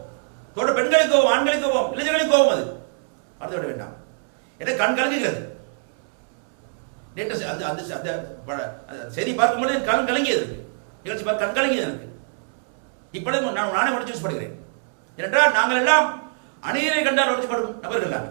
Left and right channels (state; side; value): silent; left; digital silence